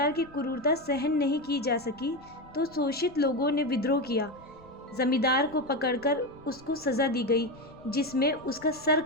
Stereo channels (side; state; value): left; noise; rumble, 26 dB below the sound